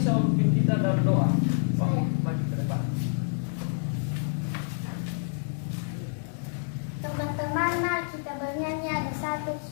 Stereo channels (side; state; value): right; silent; 59 dB below the other